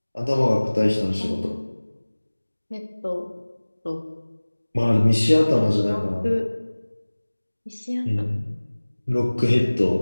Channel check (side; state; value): both; inverted; correlation -1.00